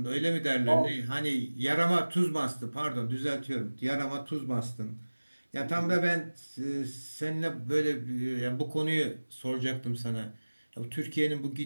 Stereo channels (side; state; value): both; inverted; correlation -1.00